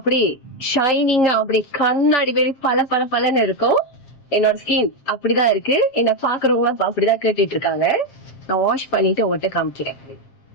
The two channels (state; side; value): late; right; 7.5 ms